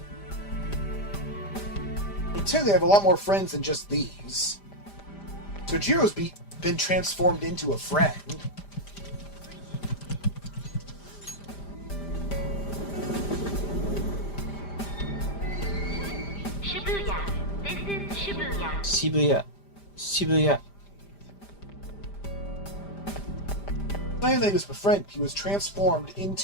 I technically have a lot more friends than just these. So Jiro's been transformed into a friend. Shibuya. This is Shibuya. Shibuya. Shibuya. Not only was a friend, he was transformed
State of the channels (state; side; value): late; right; 5.0 ms